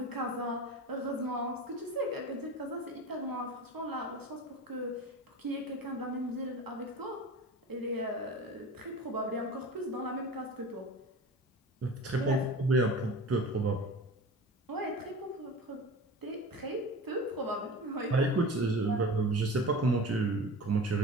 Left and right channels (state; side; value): normal; both; correlation 0.34